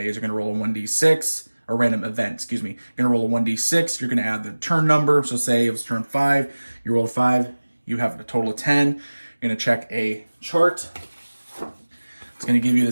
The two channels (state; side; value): inverted; both; correlation -1.00